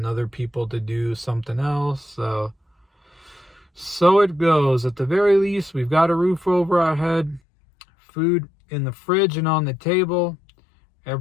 other people to do something else. So it goes. At the very least, we've got a roof over our head, food in the fridge and on the table.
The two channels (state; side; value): drops out; right; at 7.4 s